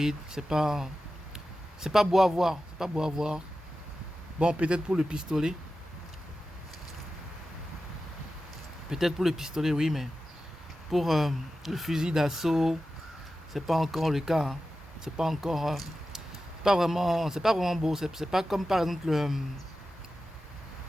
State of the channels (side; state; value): both; normal; correlation 0.93